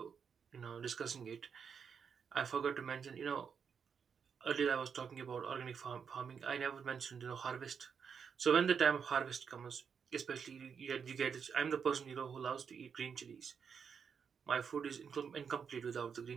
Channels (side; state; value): left; quieter; 6.7 dB